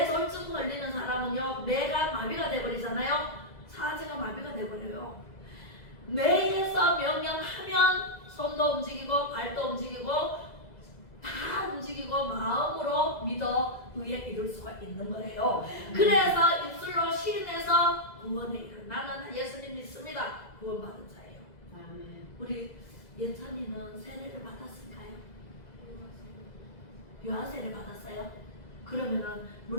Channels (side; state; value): right; late; 2.0 ms